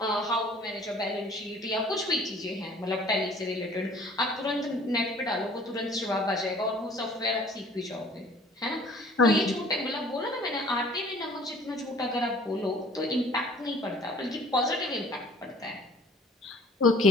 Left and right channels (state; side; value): normal; both; correlation 0.52